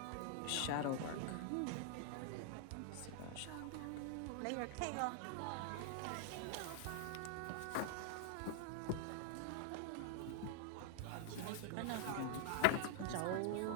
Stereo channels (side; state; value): both; different; correlation 0.00